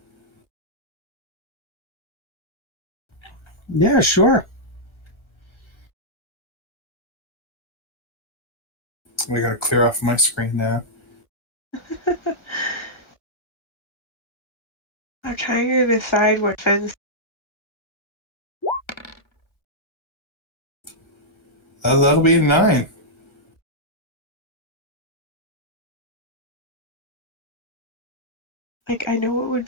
Yeah, sure. I gotta clear off my screen now. I'm trying to decide what fence. That'll be a 9. Like, I know what would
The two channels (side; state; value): right; late; 1.5 ms